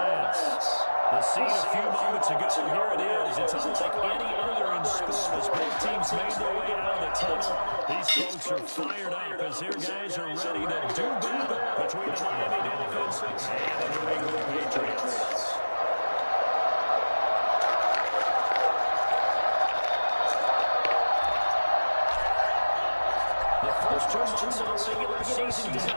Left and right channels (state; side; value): inverted; both; correlation -1.00